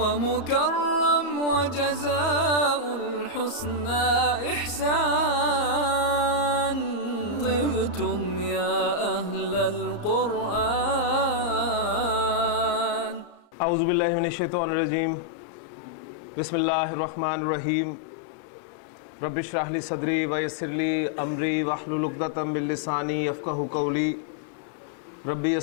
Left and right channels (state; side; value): late; right; 34 ms